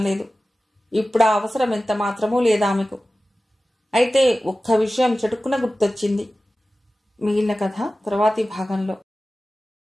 లేదు. ఇప్పుడు ఆ అవసరం ఎంత మాత్రమూ లేదామెకు. అయితే ఒక్క విషయం చటుక్కున గుర్తొచ్చింది. మిగిలిన కథ తర్వాతి భాగంలో.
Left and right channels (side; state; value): both; normal; correlation 0.95